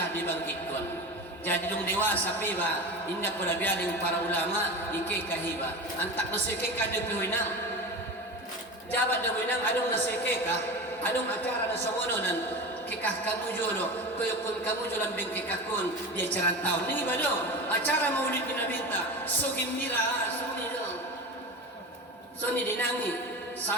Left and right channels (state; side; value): normal; both; correlation 0.28